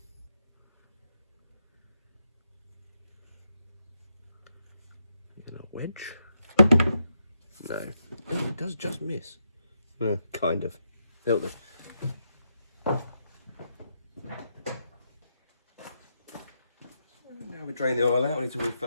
And a wedge? No. Oh, it does just miss. Kind of. That'll do. Now we drain the oil out, we need to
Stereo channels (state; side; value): inverted; both; correlation -0.82